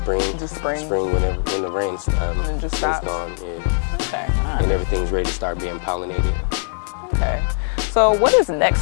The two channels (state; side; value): silent; right; digital silence